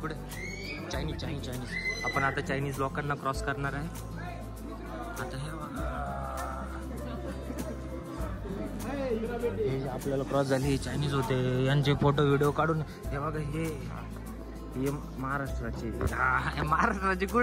चायनीज. आपण आता चायनीज लोकांना क्रॉस करणार आहे. आता हे आपल्याला क्रॉस झाले हे चायनीज होते. यांचे फोटो व्हिडिओ काढून हे बघा. हे महाराष्ट्राचे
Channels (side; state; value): both; identical; correlation 1.00